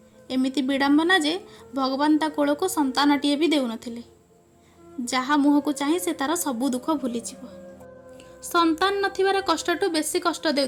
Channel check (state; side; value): identical; both; correlation 1.00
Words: एमिति विडंबना जे भगवान ता कोल को संतानटीए भी देउ नथिले। जहा मुह को चाहे से तार सबू दुख भूली जीव। संतान नथिबार कष्टटू बेसी कष्ट